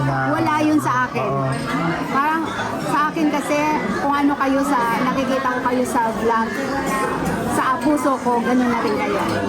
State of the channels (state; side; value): identical; both; correlation 1.00